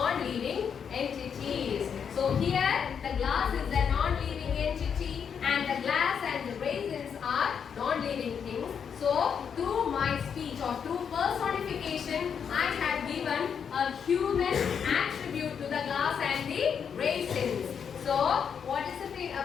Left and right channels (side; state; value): right; quieter; 7.2 dB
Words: entities. So here the glass is a non-living entity and the glass and the raisins are non-living things. So through my speech or through personification, I have given a human attribute to the glass and the raisins. So what is a